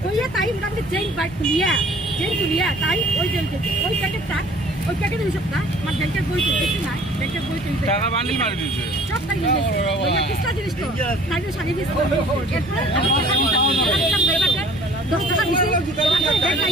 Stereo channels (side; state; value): both; normal; correlation 0.52